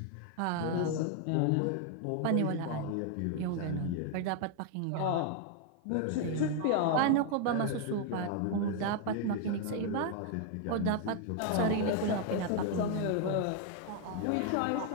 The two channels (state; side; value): different; both; correlation 0.00